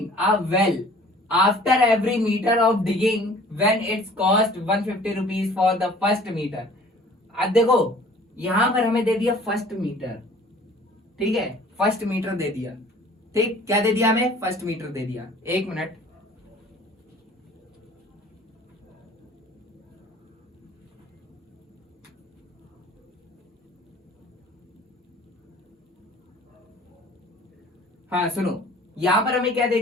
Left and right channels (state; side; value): normal; both; correlation 0.50